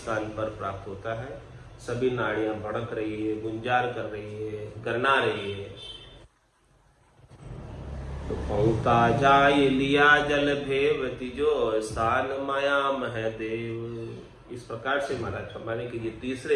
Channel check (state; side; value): identical; both; correlation 1.00